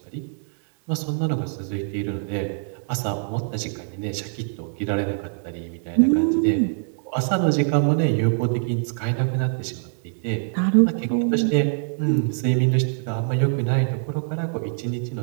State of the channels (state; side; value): silent; left; digital silence